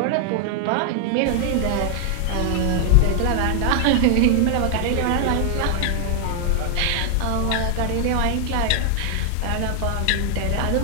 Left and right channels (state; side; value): different; both; correlation 0.00